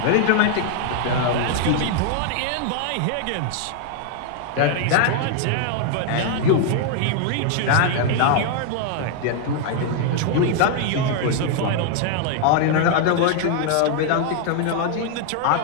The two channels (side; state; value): both; different; correlation 0.00